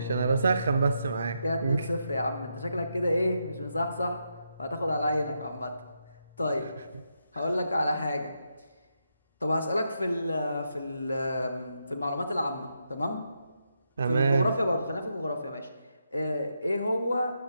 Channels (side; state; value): both; inverted; correlation -0.82